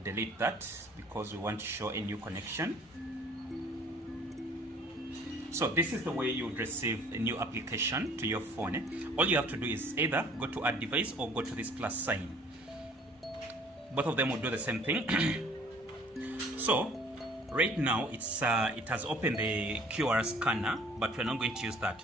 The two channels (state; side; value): normal; both; correlation 0.54